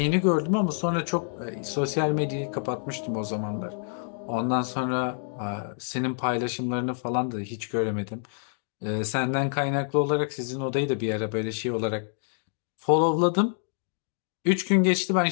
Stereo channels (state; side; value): silent; right; 60 dB below the other